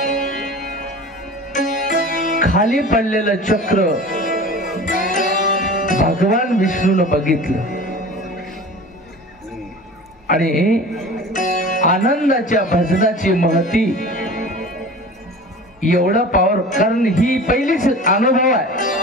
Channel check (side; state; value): both; normal; correlation 0.38